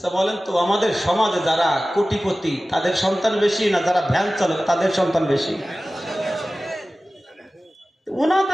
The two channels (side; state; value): both; normal; correlation 0.96